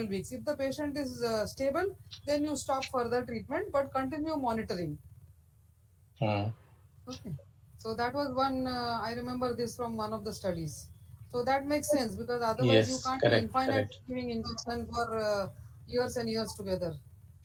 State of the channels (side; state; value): both; identical; correlation 1.00